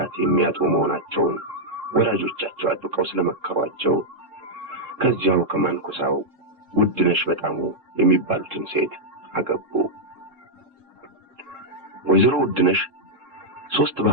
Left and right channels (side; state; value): left; late; 3.7 ms